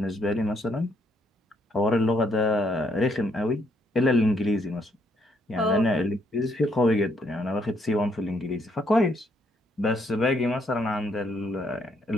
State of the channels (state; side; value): normal; both; correlation 0.72